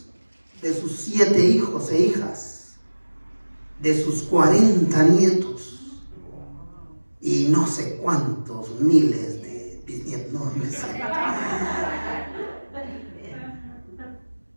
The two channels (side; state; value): both; inverted; correlation -1.00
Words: 7 hijos e hijas, de sus 40 nietos y no sé cuántos miles de bisnietos, no me sé.